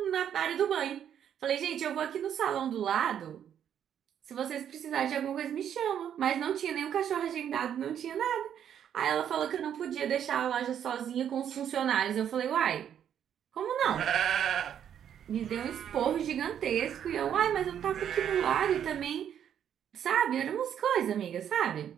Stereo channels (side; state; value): left; quieter; 9.3 dB